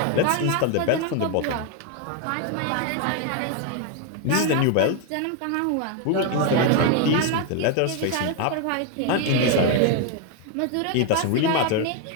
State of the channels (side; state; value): both; different; correlation 0.01